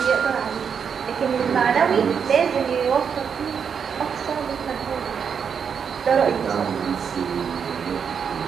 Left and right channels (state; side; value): quieter; left; 6.9 dB